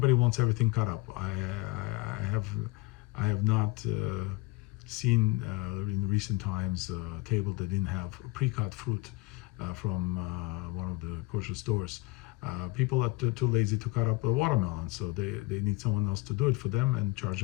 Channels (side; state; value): right; quieter; 22.1 dB